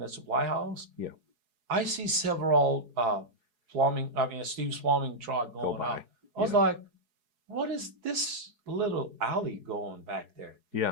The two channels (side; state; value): left; late; 4.7 ms